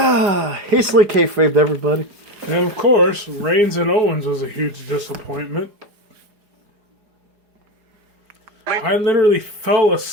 kayfabed, everybody. And of course, Reigns and Owens was a huge disappointment. I literally fell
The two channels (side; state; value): left; late; 4.8 ms